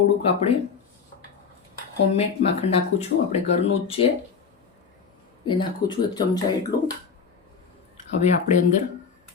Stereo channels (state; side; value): quieter; right; 5.9 dB